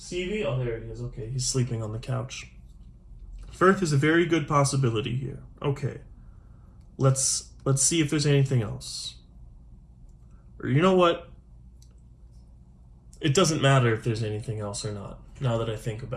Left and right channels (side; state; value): both; identical; correlation 1.00